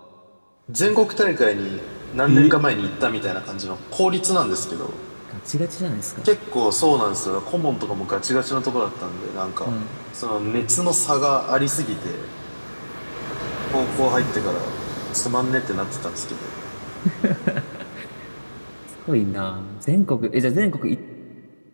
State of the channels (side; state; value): both; inverted; correlation -1.00